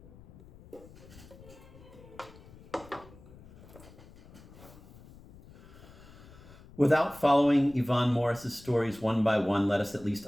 Without following Yvonne Morris's stories one by one, let us at least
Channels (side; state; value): left; noise; rumble, 21 dB below the sound